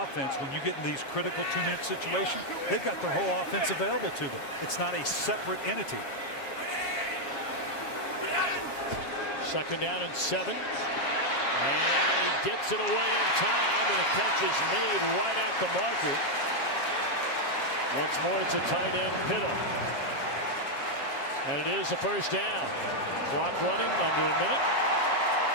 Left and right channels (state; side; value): late; right; 7.4 ms